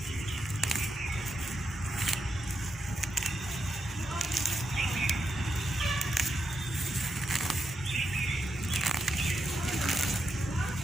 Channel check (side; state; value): both; normal; correlation 0.84